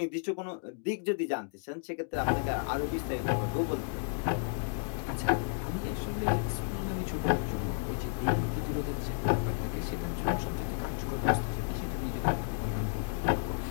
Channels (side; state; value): right; silent; digital silence